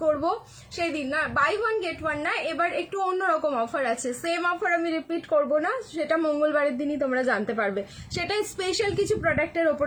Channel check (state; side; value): identical; both; correlation 1.00